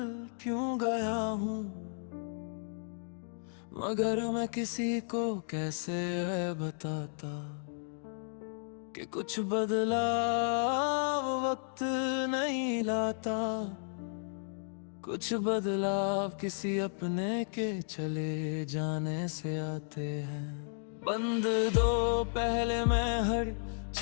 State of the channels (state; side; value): silent; right; digital silence